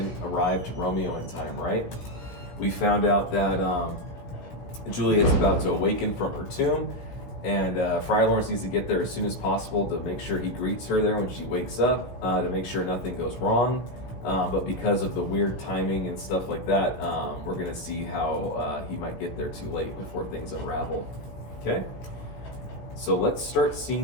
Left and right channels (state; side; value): late; right; 16 ms